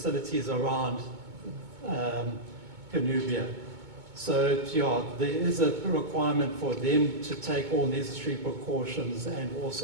around Cornubia. So there is a requirement for them to take all necessary precautions and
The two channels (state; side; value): late; left; 2.2 ms